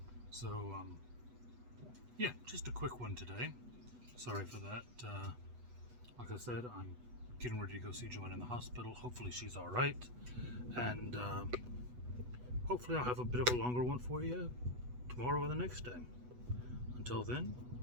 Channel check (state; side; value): late; left; 8.1 ms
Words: So, yeah, just a quick one today. Sorry for that. Like I said, I'm getting ready to go see Joanne in the hospital. Hopefully she's all right, and hopefully I'll have a bit of a longer one for you tomorrow or the next day. Until then,